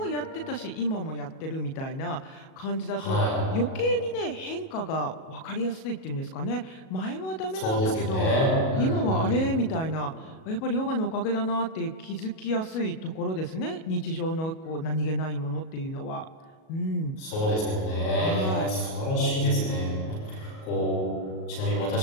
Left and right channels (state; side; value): late; right; 37 ms